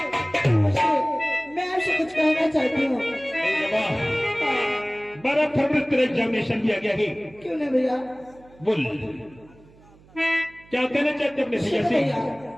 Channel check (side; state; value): right; noise; hum, 26 dB below the sound